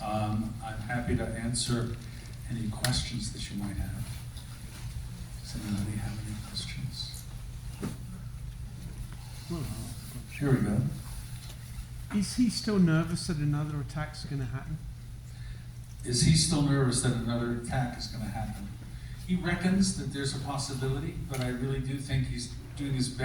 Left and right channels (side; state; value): both; identical; correlation 1.00